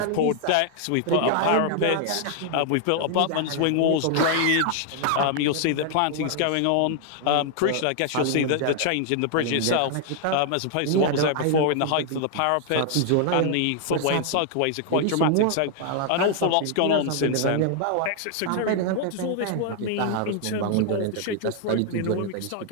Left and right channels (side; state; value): both; different; correlation 0.00